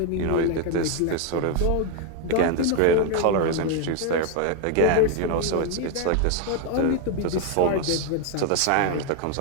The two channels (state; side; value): different; both; correlation 0.01